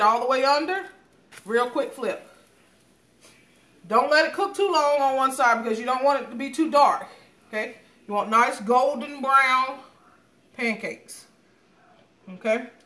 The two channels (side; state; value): both; identical; correlation 1.00